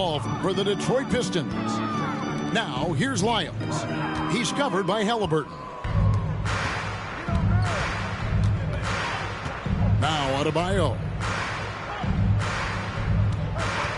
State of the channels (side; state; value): both; identical; correlation 1.00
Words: for the Detroit Pistons. Now, here's Lyles. He's covered by Halliburton. Now, Adebayo.